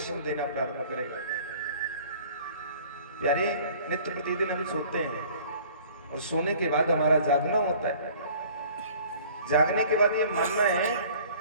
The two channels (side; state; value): both; inverted; correlation -0.50